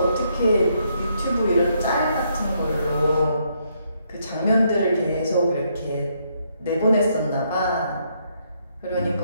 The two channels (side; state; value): both; inverted; correlation -0.74